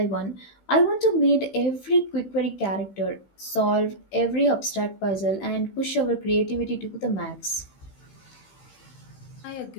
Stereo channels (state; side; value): late; right; 15 ms